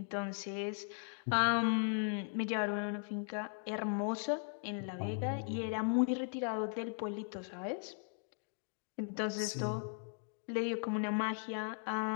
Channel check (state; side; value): silent; right; 52 dB below the other